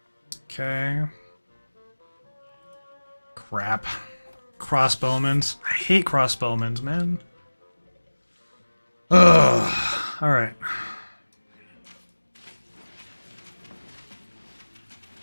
Okay. Crap. Crossbowmans. I hate crossbowmans, man. Ugh. Alright.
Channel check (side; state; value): both; inverted; correlation -1.00